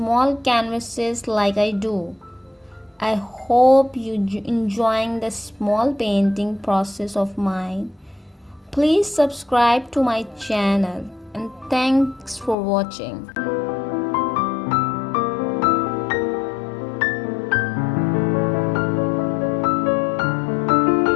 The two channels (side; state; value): right; drops out; at 12.6 s